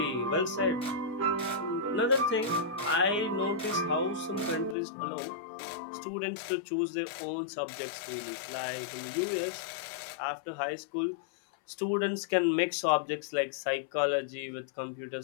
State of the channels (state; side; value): drops out; right; at 4.8 s